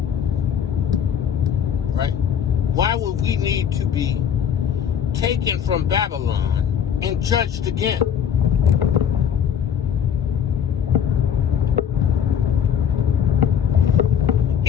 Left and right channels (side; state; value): right; quieter; 8.4 dB